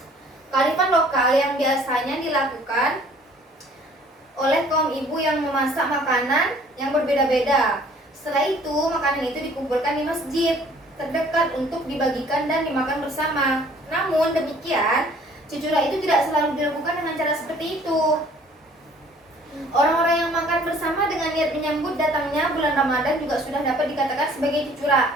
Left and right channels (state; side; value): normal; both; correlation 0.55